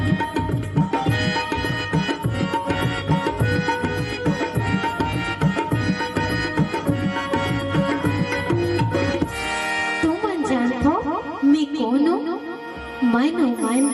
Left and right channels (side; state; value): both; identical; correlation 1.00